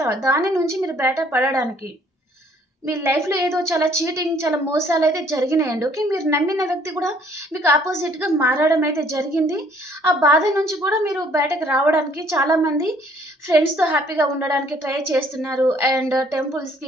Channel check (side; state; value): both; normal; correlation 0.61